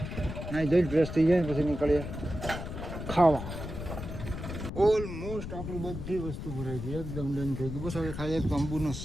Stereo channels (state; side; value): noise; left; rumble, 7 dB below the sound